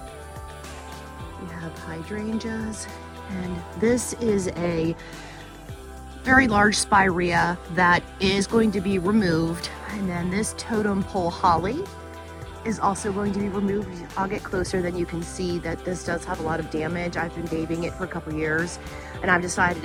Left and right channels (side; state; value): both; identical; correlation 1.00